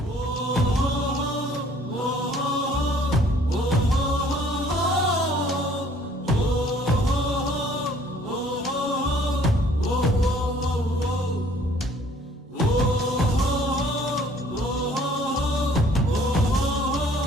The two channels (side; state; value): both; normal; correlation 0.57